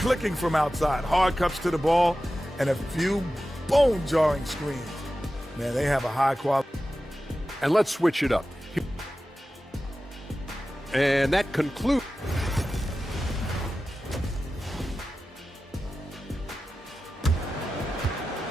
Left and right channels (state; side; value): normal; both; correlation 0.94